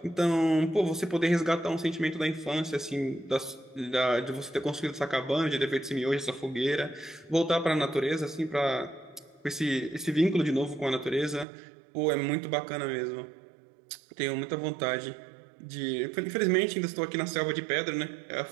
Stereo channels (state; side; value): drops out; left; at 11.5 s